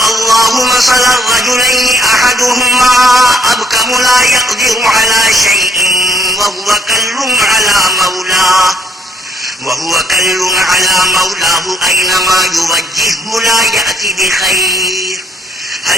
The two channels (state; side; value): normal; both; correlation 0.68